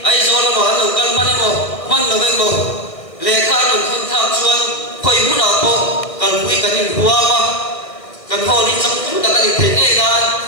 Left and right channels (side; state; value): right; late; 1.5 ms